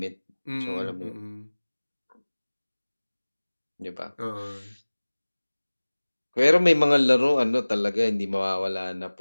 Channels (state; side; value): inverted; both; correlation -1.00